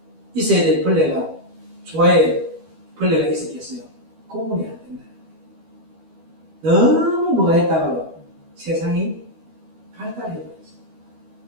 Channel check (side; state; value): left; late; 12 ms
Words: 있어야 될 벌레가 조화에 벌레가 있었겠어요? 구분이 안 된다. 너무 뭐가 했다가요 세상이 발달해버렸어요.